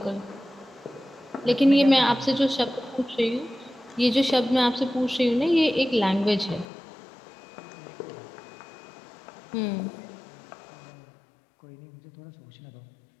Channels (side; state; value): right; drops out; at 6.7 s